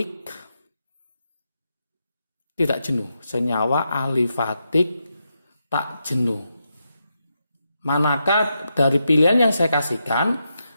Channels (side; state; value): both; inverted; correlation -0.85